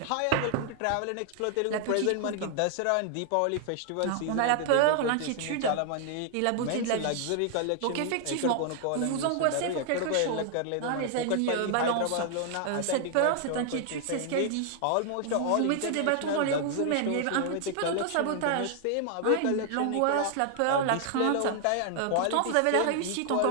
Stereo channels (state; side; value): different; both; correlation 0.00